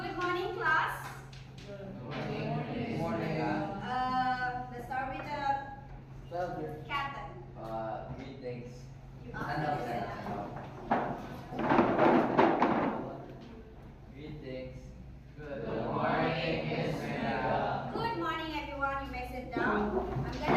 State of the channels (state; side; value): identical; both; correlation 1.00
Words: morning, class. Good morning. Let's start with the captain. Greetings. Greetings. Good morning, Miss Mega. Good morning, everyone. You may sit down. I'm